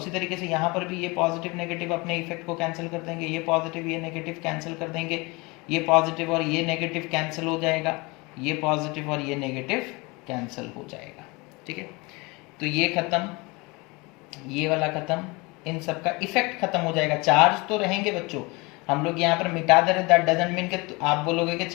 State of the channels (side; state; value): right; quieter; 25.8 dB